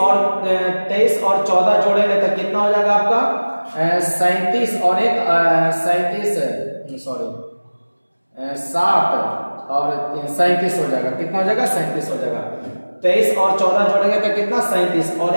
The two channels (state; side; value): inverted; both; correlation -1.00